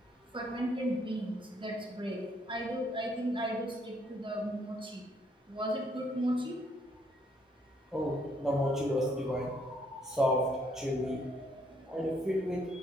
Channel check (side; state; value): both; normal; correlation 0.69